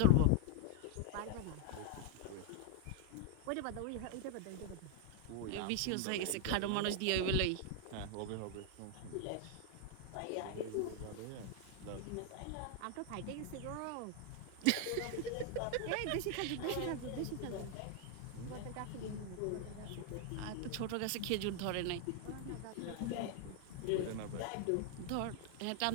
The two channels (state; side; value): different; both; correlation 0.01